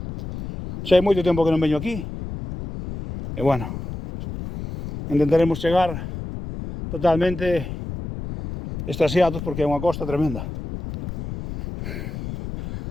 Xa hai moito tempo que non veño aquí. E bueno, intentaremos chegar totalmente extasiados porque é unha costa tremenda.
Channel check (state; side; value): noise; left; rumble, 8 dB below the sound